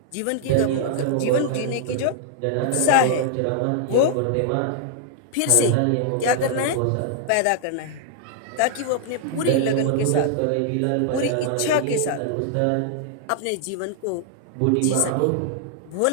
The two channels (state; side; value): different; both; correlation -0.01